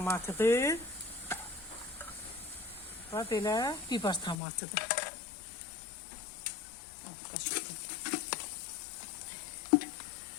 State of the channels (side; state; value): right; drops out; at 4.4 s